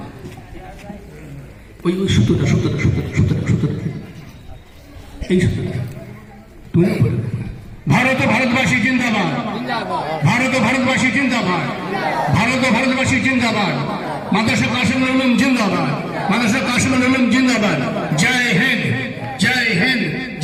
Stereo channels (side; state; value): both; identical; correlation 1.00